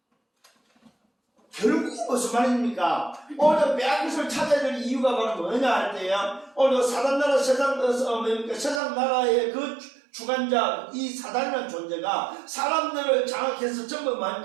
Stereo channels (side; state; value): left; drops out; at 8.8 s